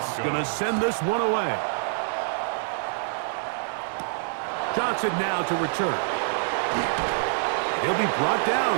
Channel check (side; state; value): left; silent; digital silence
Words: going to send this one away. Johnson now to return. He'll be brought